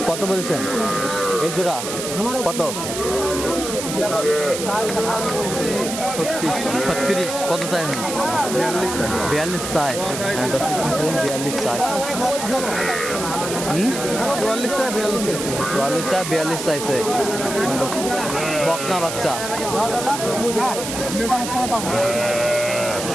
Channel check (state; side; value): noise; right; hiss, 6 dB below the sound